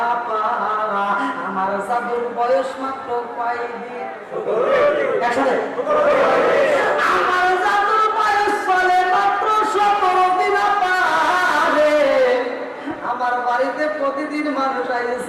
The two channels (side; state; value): both; identical; correlation 1.00